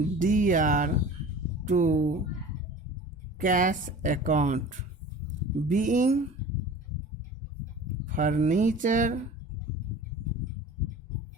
to cash account, being furniture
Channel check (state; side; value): normal; both; correlation 0.40